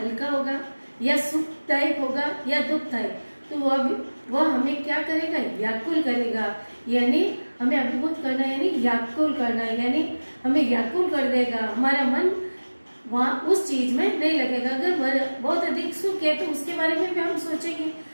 होगा या सुखदायक होगा या दुखदायक, तो वह हमें क्या करेगा? व्याकुल करेगा। यानी हमें अभिभूत करना यानी व्याकुल करना, यानी हमें व्याकुल कर देगा। हमारा मन वहाँ उस चीज में नहीं लगेगा। अगर बहुत अधिक सुख है तो उसके बारे में भी हम सोचेंगे,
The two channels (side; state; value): both; inverted; correlation -1.00